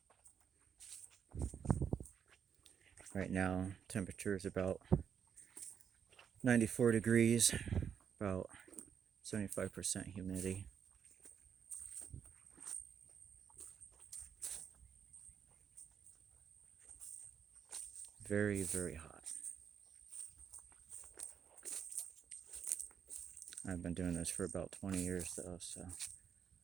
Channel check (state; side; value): quieter; left; 7.5 dB